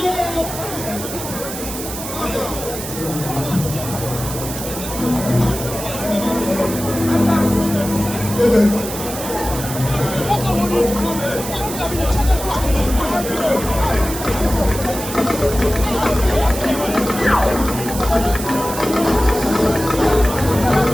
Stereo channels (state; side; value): noise; right; hiss, 8 dB below the sound